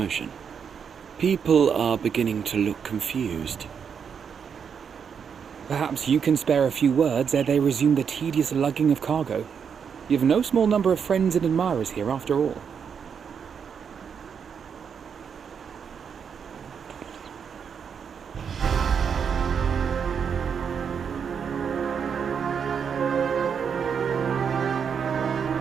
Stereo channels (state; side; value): quieter; left; 6.9 dB